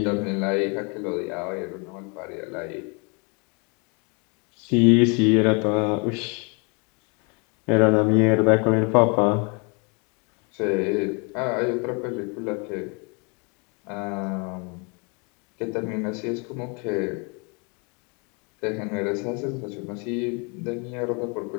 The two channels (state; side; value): quieter; right; 33.3 dB